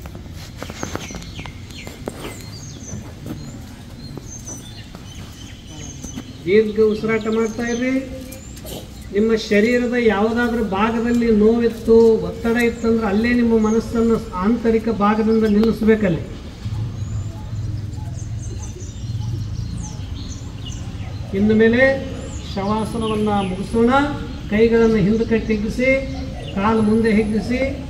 ದೀರ್ಘ ಉಸಿರಾಟ ಮಾಡ್ತಾ ಇರ್ರಿ. ನಿಮ್ಮ ಶರೀರದ ಯಾವುದಾದ್ರೂ ಭಾಗದಲ್ಲಿ ನೋವಿತ್ತು, ಒತ್ತಡ ಇತ್ತಂದ್ರೆ ಅಲ್ಲೇ ನಿಮ್ಮ ಮನಸ್ಸನ್ನು ಆಂತರಿಕ ಭಾಗದಿಂದ ನಿಲ್ಲಿಸಬೇಕಲ್ಲಿ. ಇನ್ನು ಮೇಲೆ ಶವಾಸನವನ್ನು ಮುಗಿಸೋಣ. ಕೈಗಳನ್ನು ಹಿಂದಕ್ಕೆ ಹಿಗ್ಗಿಸಿ, ಕಾಲು ಮುಂದೆ ಹಿಗ್ಗಿಸಿ,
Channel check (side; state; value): both; identical; correlation 1.00